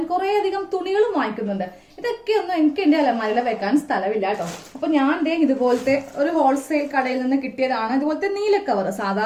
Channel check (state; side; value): identical; both; correlation 1.00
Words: കുറെ അധികം തുണികളും വാങ്ങിക്കുന്നുണ്ട്. ഇതൊക്കെ ഒന്നും എനിക്ക് എന്റെ അലമാരയിൽ വെക്കാൻ സ്ഥലമില്ല കേട്ടോ. അപ്പൊ ഞാൻ ഇതുപോലത്തെ ഒരു ഹോൾസെയിൽ കടയിൽ നിന്ന് കിട്ടിയതാണ് ഇതുപോലത്തെ നീല കവർ.